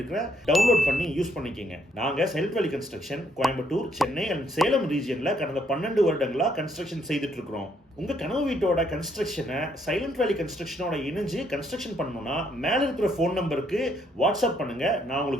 டவுன்லோட் பண்ணி யூஸ் பண்ணிக்கங்க. நாங்க silent valley construction Coimbatore, Chennai and Salem ரீஜியன்ல கடந்த 12 வருடங்களா கன்ஸ்ட்ரக்ஷன் செய்துட்டு இருக்கிறோம். உங்க கனவு வீட்டோட கன்ஸ்ட்ரக்ஷனை சைலண்ட் வேலி கன்ஸ்ட்ரக்ஷனோட இணைஞ்சு கன்ஸ்ட்ரக்ஷன் பண்ணணும்னா மேல இருக்கிற ஃபோன் நம்பருக்கு வாட்ஸ்அப் பண்ணுங்க, நான்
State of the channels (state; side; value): normal; both; correlation 0.70